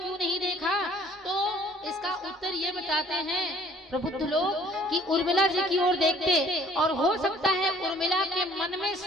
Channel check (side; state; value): both; normal; correlation 0.56